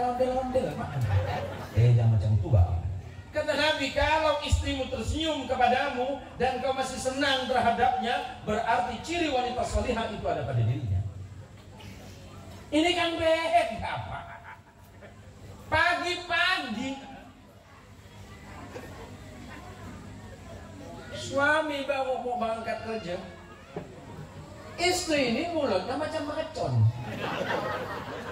ondel-ondel mak. Jangan macam tua. Kata Nabi, kalau istrimu tersenyum kepadamu dan kau masih senang terhadapnya, berarti ciri wanita salihah itu ada pada dirinya. Ini kan beda, Pak. Pagi-pagi suami baru mau berangkat kerja, istri ini mulutnya macam mercon.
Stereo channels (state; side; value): identical; both; correlation 1.00